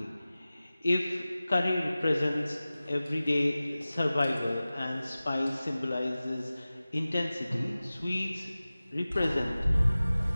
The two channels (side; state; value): both; inverted; correlation -0.97